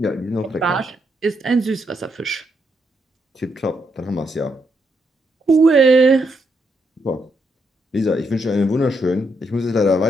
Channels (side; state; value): both; normal; correlation 0.78